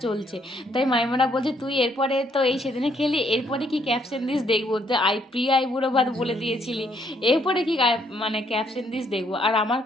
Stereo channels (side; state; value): both; normal; correlation 0.69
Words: চলছে। তাই মাইমারা বলছে তুই এরপরে তো এই সেদিনে খেলি, এরপরে কি ক্যাপশন দিস দেখবো, যে প্রিয় আইবুড়ো ভাত বলে দিয়েছিলি, এরপরে কি মানে ক্যাপশন দিস দেখবো। আর আমার